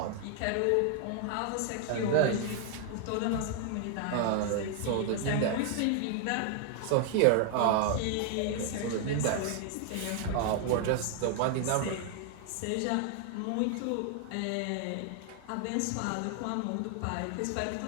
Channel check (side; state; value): both; different; correlation 0.00